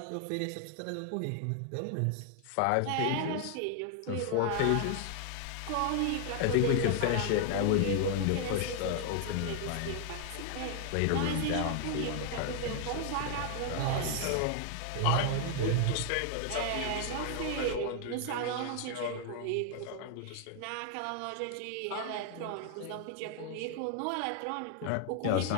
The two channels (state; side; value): different; both; correlation 0.00